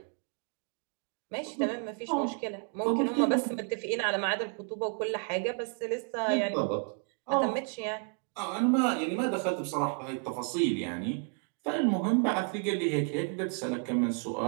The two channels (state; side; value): quieter; left; 37.0 dB